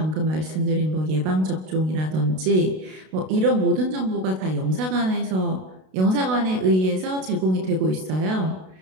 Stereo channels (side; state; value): left; late; 32 ms